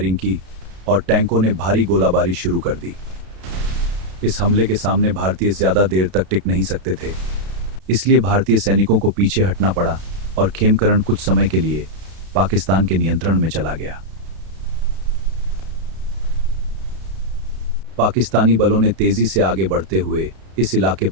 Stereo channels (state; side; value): late; left; 32 ms